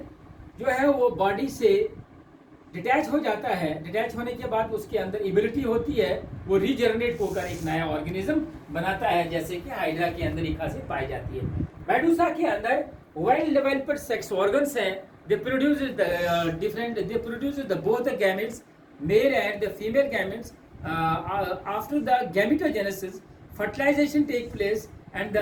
जो है वो बॉडी से डिटैच हो जाता है, डिटैच होने के बाद उसके अंदर एबिलिटी होती है वो रीजनरेट होकर एक नया ऑर्गेनिज्म बनाता है, जैसे कि हाइड्रा के अंदर एक खासियत पाई जाती है। मेडुसा के अंदर वेल डेवलप्ड सेक्स ऑर्गन्स हैं, they produce the both the gametes, male and the female gametes. After the gametogenesis fertilization take place, and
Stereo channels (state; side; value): identical; both; correlation 1.00